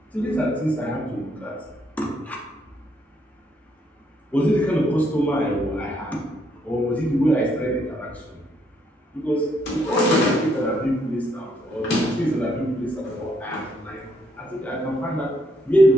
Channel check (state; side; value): normal; both; correlation 0.72